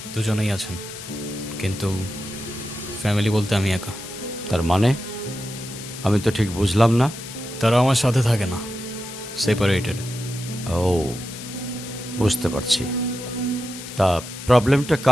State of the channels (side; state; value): left; noise; hiss, 12 dB below the sound